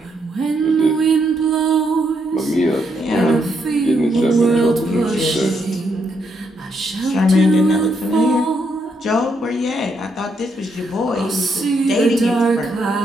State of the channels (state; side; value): normal; both; correlation 0.77